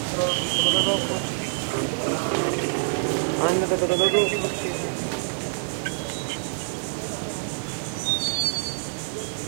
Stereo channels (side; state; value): left; silent; digital silence